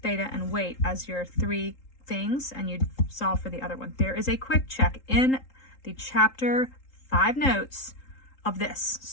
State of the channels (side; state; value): right; late; 3.8 ms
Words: theta, and weight as your three things, and you'd solve for the other one. There is a quick check in the chapter 5 notes of this.